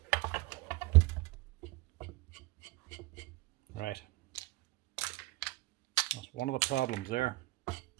Right. That's one of the problems there.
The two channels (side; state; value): left; quieter; 21.2 dB